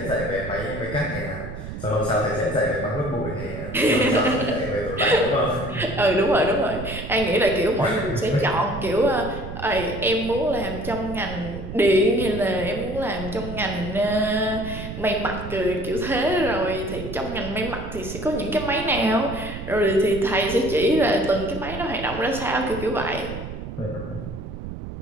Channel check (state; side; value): noise; right; rumble, 9 dB below the sound